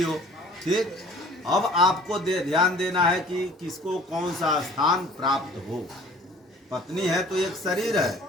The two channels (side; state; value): both; normal; correlation 0.51